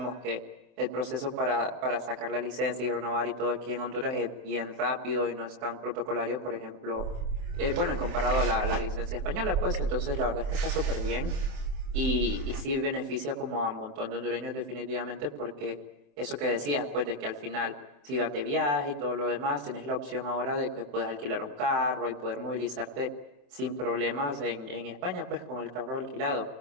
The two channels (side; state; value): left; late; 28 ms